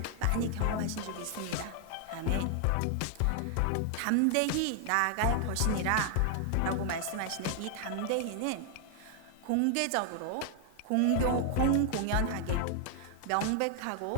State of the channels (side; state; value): both; different; correlation 0.00